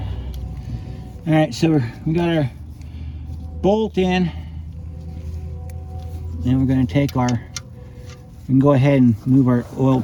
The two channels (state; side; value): identical; both; correlation 1.00